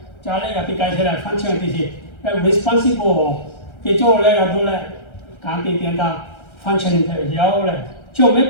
잘해 같이 가셔라 function 되지 responsible 뒤쪽을 내가 돌래 감기 된다 function 되어요. 저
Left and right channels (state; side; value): late; right; 1.3 ms